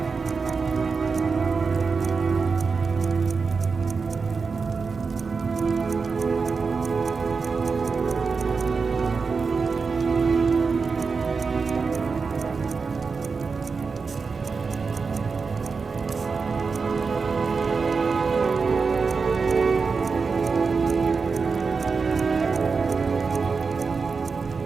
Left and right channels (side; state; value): left; quieter; 4.9 dB